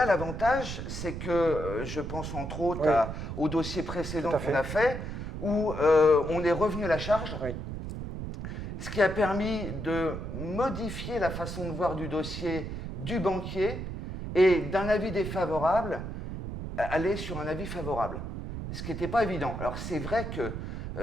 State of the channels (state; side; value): noise; right; rumble, 6 dB below the sound